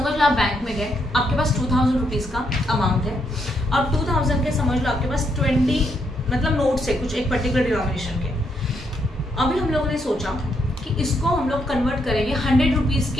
लो, आप बैंक में गए, आपके पास 2000 रुपीज का अमाउंट है, और 2000 के समझ लो आपके पास 20 मतलब नोट्स है कुछ एक पर्टिकुलर डिनोमिनेशन के। अभी हम लोगों ने सोचा कि इसको हम लोग कन्वर्ट करेंगे 100 रुपीज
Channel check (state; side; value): normal; both; correlation 0.76